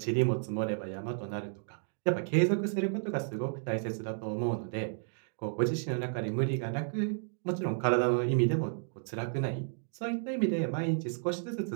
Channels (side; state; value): left; silent; digital silence